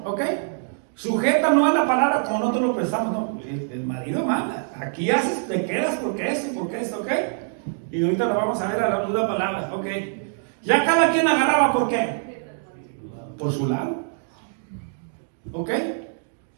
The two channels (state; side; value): silent; left; digital silence